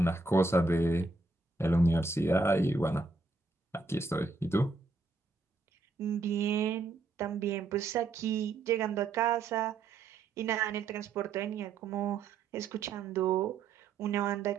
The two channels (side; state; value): left; quieter; 3.7 dB